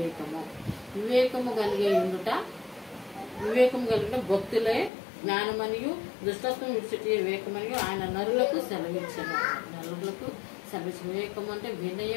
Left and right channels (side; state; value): right; drops out; at 4.9 s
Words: వివేకము కలిగి ఉండుట భక్తులే జ్ఞానమనియు. దుష్టత్వం విడిచిటే వివేకమనియు ఆయన నరులకు సెలవిచ్చెను. వివేకము అంటే